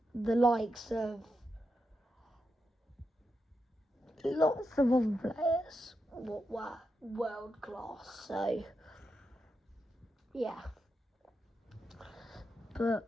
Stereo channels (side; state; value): both; normal; correlation 0.86